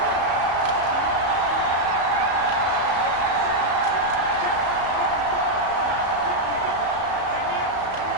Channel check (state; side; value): late; left; 34 ms